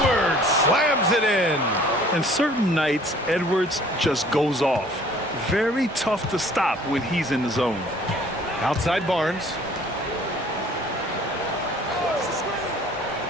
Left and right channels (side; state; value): both; normal; correlation 0.53